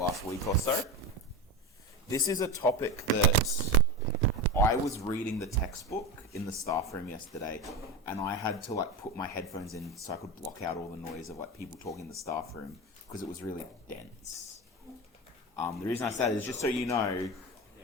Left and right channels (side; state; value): both; normal; correlation 0.22